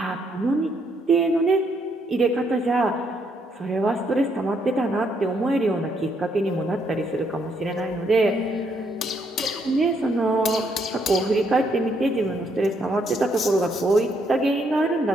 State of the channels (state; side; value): normal; both; correlation 0.73